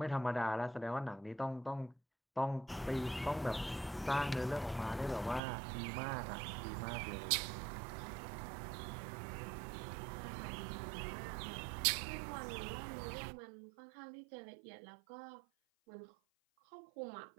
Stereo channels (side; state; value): left; drops out; at 5.4 s